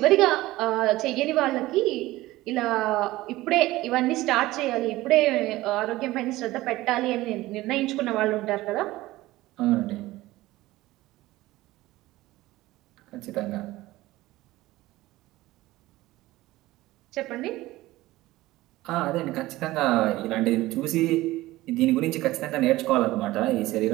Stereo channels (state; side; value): quieter; left; 17.7 dB